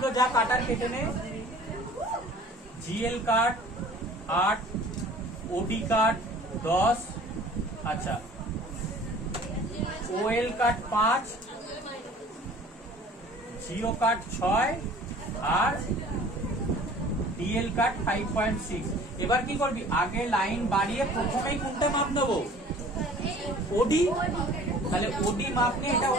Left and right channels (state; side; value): normal; both; correlation 0.48